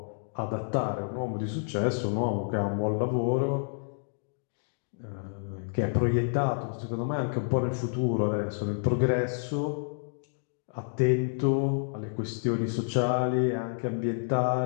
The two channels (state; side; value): silent; right; digital silence